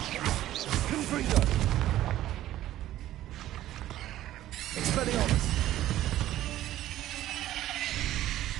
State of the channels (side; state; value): left; quieter; 13.8 dB